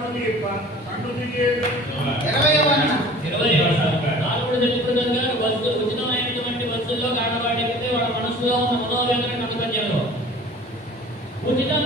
దీప కండు దిగేదు. 20 తెలుపుదంగా వస్తు ఉచితమైనటువంటి వస్తువుల్లో కానవాడికితే వాళ్ళ మనసులో ఉన్న మనోవేదన కనుకజ్ఞంలో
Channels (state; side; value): normal; both; correlation 0.45